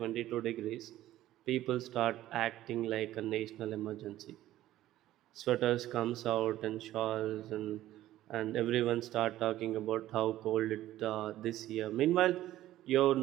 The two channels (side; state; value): left; quieter; 14.3 dB